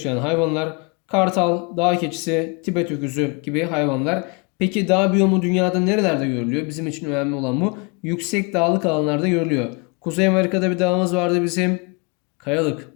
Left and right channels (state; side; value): quieter; right; 31.8 dB